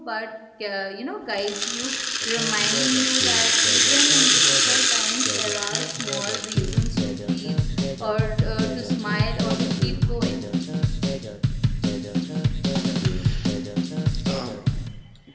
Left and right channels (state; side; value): identical; both; correlation 1.00